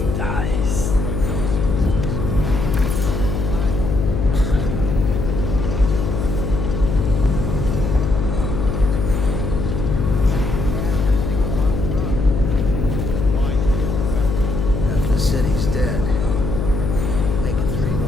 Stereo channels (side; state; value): left; noise; hum, 2 dB below the sound